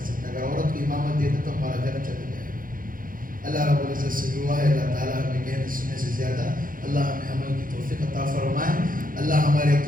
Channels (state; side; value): late; left; 0.40 ms